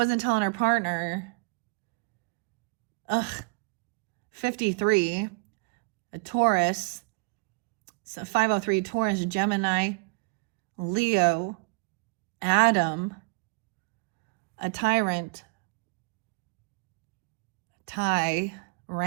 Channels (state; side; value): quieter; left; 31.0 dB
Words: telling her partner. Ugh. 53. A Taurus. So 503 Taurus, Gemini, Leo, Adam, a tyrant, Ty,